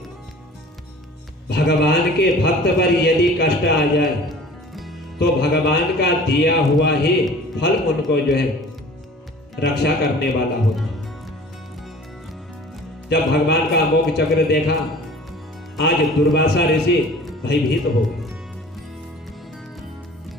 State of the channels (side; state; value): both; normal; correlation 0.45